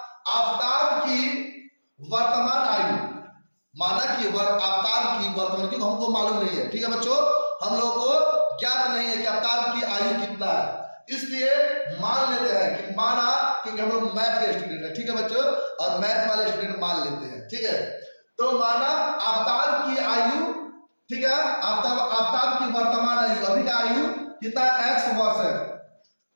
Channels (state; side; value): inverted; both; correlation -1.00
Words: आफ्ताब की वर्तमान आयु, माना कि आफ्ताब की वर्तमान, क्योंकि हमको मालूम नहीं है। ठीक है बच्चों, हम लोगों को ज्ञात नहीं है कि आफ्ताब की आयु कितना है, इसलिए मान लेते हैं कि माना, क्योंकि हम लोग मैथ के स्टूडेंट है। ठीक है बच्चों, और मैथ वाले स्टूडेंट मान लेते हैं। ठीक है, तो माना आफ्ताब की आयु, ठीक है, आफ्ताब की वर्तमान आयु, अभी का आयु कितना, x वर्ष है।